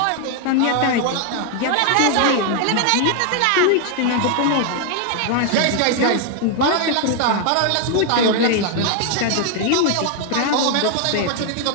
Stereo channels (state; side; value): different; both; correlation 0.00